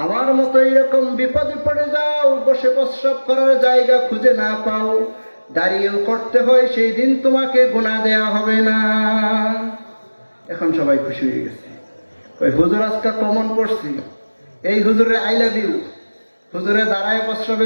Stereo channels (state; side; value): inverted; both; correlation -1.00